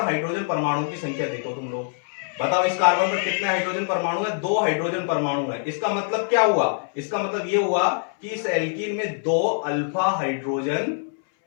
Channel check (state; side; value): silent; right; 62 dB below the other